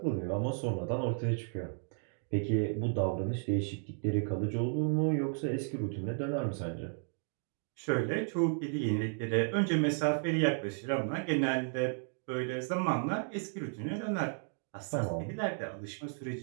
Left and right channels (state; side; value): silent; left; 55 dB below the other